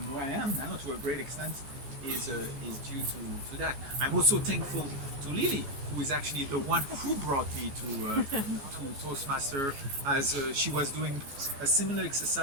where I am now, to a great extent, is due to that. I'm also thankful to Lily, who is actually the one who brought me to Toastmaster, as she was doing a similar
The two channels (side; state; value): left; late; 14 ms